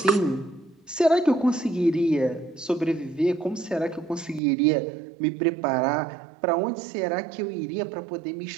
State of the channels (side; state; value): left; drops out; at 4.4 s